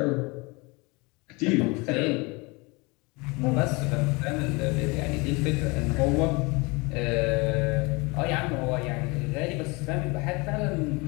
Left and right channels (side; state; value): right; quieter; 26.7 dB